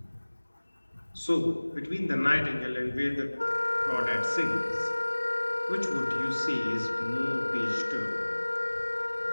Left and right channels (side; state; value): both; inverted; correlation -1.00